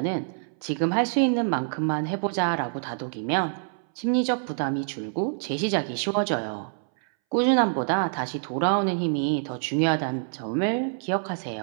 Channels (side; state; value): left; silent; 60 dB below the other